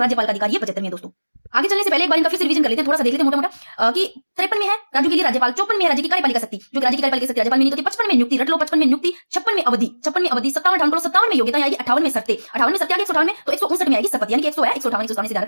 का अधिकार, ये 75 में है दोस्तों। आगे चलने से पहले एक बार इनका फिर से रिवीजन कर लेते हैं, थोड़ा सा देख लेते हैं मोटा-मोटा कि 53 में है राज्यों के लिए राज्यपाल, 54 में है राज्य की कार्यपालिका शक्ति, जो राज्य की कार्यपालिका शक्ति राज्यपाल में नहीं होती, 55 में नियुक्ति रट लो, 55 में नियुक्ति, 56 में अवधि, 56 में अवधि, 57 में योग्यता आएगी, 58 में शर्तें, 58 में शर्तें आएगी, 158 में तो 159 में आएगी शपथ, यानी कि 100 है 158 से ध्यान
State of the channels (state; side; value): inverted; both; correlation -1.00